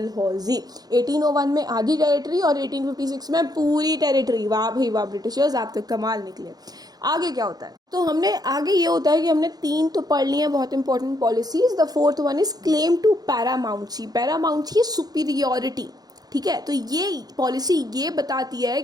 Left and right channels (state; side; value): late; left; 0.19 ms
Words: 1801 में आधी टेरिटरी और 1856 में पूरी टेरिटरी. वाह भाई वाह ब्रिटिशर्स, आप तो कमाल निकले. आगे क्या होता है? तो हमने आगे ये होता है कि हमने 3 तो पढ़ लिए हैं बहुत important policies. The fourth one is claim to paramountcy. Paramountcy superiority. ठीक है. तो ये पॉलिसी ये बताती है